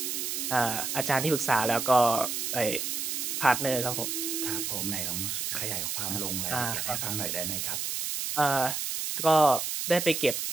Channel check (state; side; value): noise; right; hiss, 2 dB below the sound